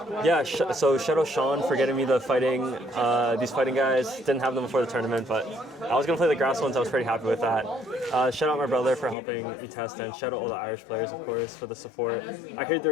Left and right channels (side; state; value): right; drops out; at 9.2 s